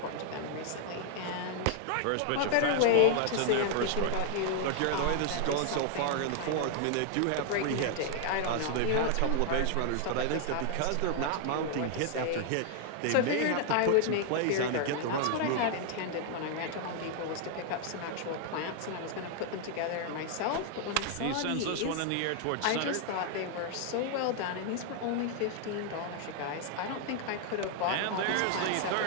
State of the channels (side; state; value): both; different; correlation 0.00